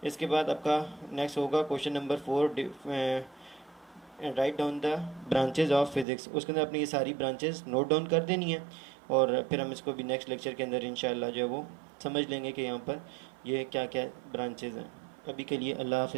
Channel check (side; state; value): left; drops out; at 6.1 s